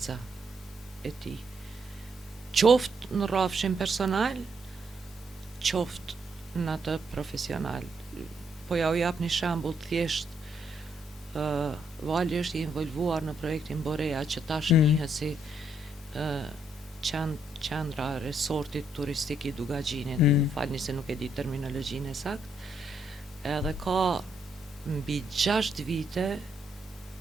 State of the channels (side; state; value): both; normal; correlation 0.74